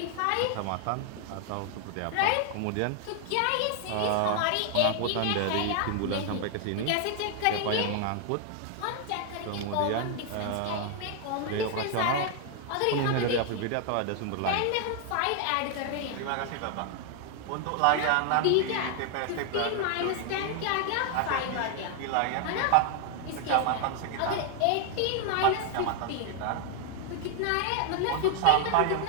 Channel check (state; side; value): different; both; correlation 0.00